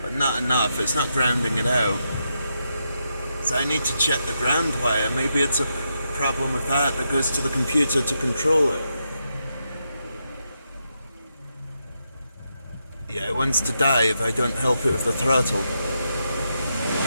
but not enough. It's not grounding it out. So I need to check the ground wire. Maybe it's a problem with that goes to the computer to control it. Yeah, it wants to die if I don't help it with the throttle.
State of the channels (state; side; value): inverted; both; correlation -0.83